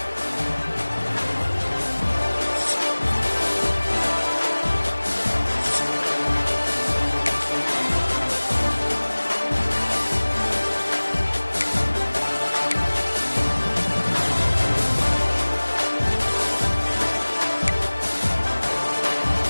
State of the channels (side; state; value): both; inverted; correlation -1.00